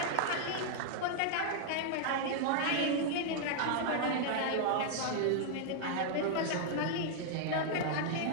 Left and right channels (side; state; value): both; different; correlation -0.01